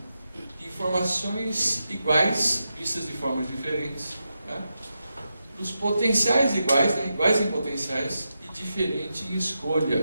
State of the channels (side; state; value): both; inverted; correlation -0.88